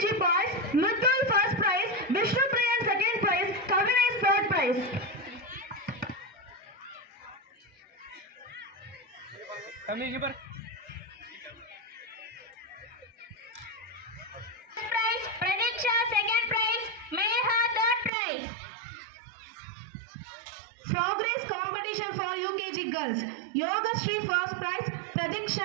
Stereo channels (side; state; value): left; drops out; at 18.1 s